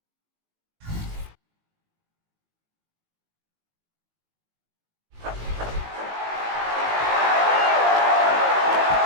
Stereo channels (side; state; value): left; late; 19 ms